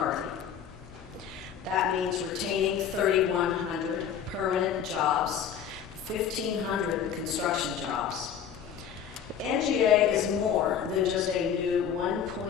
That means retaining 3,100 permanent jobs, 1,500 construction jobs. NGA is more than just a new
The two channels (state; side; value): quieter; right; 8.2 dB